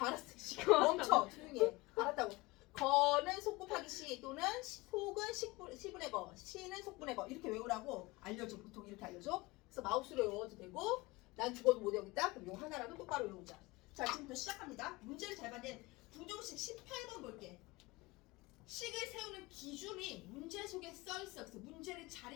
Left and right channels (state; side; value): quieter; right; 22.2 dB